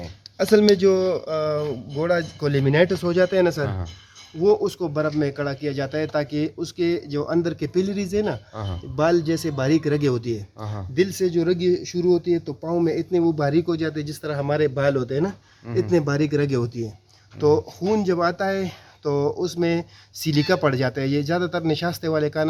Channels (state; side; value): identical; both; correlation 1.00